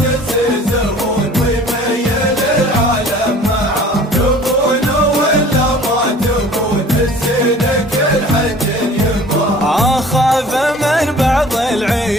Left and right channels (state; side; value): normal; both; correlation 0.48